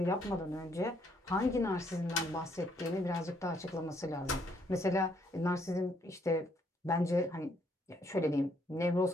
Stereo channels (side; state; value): both; normal; correlation 0.70